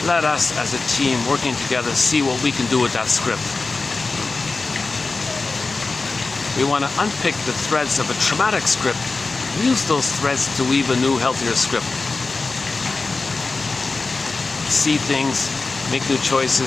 Let us, as a team, working together, see what we can do with that script. We want to unpick the threads of a traumatic script, use those threads to weave a new, healthier script. See things, make new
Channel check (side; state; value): right; quieter; 3.8 dB